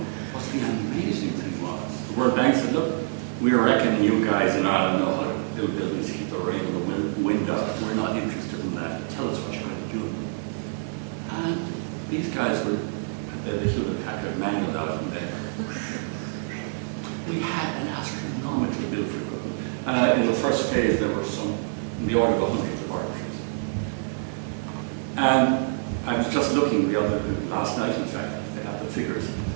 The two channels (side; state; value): left; silent; digital silence